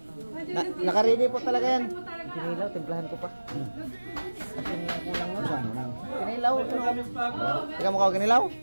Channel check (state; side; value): inverted; both; correlation -1.00